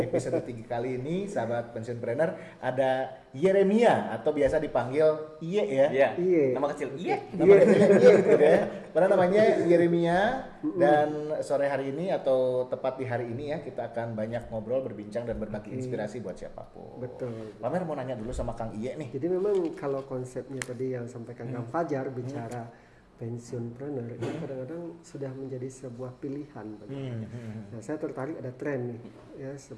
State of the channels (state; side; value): identical; both; correlation 1.00